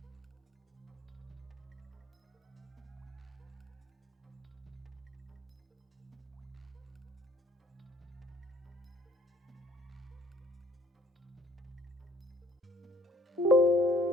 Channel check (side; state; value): both; normal; correlation 0.59